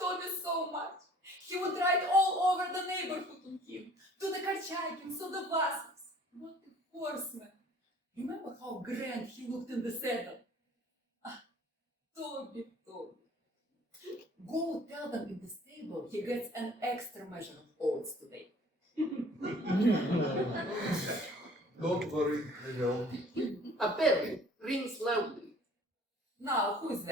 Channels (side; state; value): both; normal; correlation 0.52